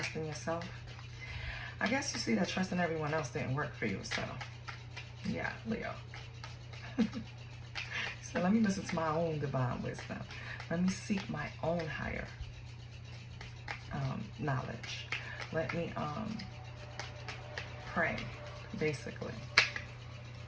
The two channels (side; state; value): both; identical; correlation 1.00